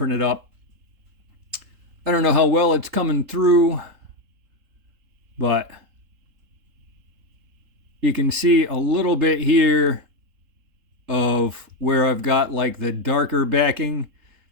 up. I don't know how well it's coming through, but you can see a little bit here of where I've got like the darker backing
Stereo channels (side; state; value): left; late; 3.7 ms